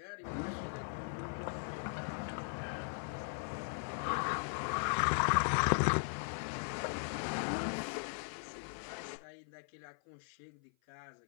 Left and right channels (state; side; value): silent; right; 52 dB below the other